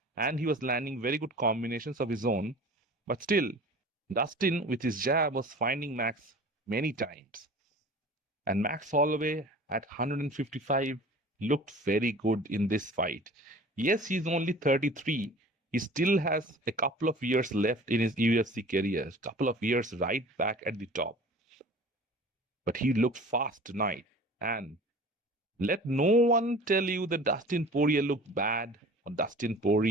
And he was landing very good combinations of his own. But still, Dustin, with his jab, was finding Max many times. And Max Holloway at 155 looked very good in this fight. Yes, he's only 33. He still has a couple of years left in his UFC career, a couple of years right back at the top. But he looked fast tonight. And let no one tell you that Dustin Poirier looked bad or Dustin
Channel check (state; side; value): normal; both; correlation 0.43